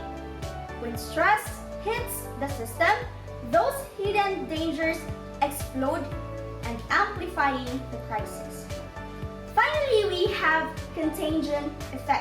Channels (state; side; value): identical; both; correlation 1.00